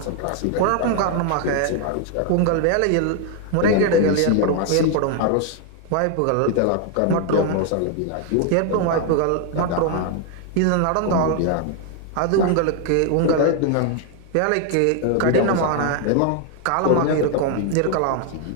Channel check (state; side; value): different; both; correlation 0.00